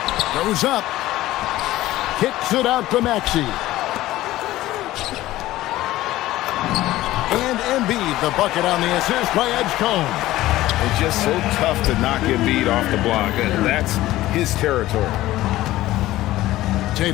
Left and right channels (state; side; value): quieter; right; 16.0 dB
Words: Goes up. Kicks it out to Maxey. And Embiid, the bucket on the assist by Edgecombe. It's just so tough to knock Embiid off the block. That's his territory.